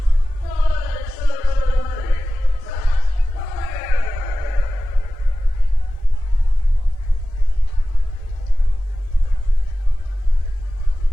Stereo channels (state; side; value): normal; both; correlation 0.95